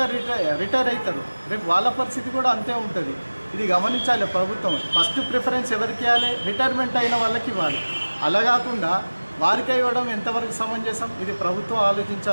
రిటైర్ అవుతారు. రేపు వాళ్ళ పరిస్థితి కూడా అంతే ఉంటుంది. ఇది గమనించాలి ప్రభుత్వం. ఫస్ట్ ప్రిఫరెన్స్ ఎవరికి ఇవ్వాలి? రిటైర్మెంట్ అయిన వాళ్ళకి ఇవ్వాలి. అలా కాకుండా వారికి ఇవ్వడం ఎంతవరకు సమంజసం? ఇది ప్రభుత్వం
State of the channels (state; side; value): inverted; both; correlation -1.00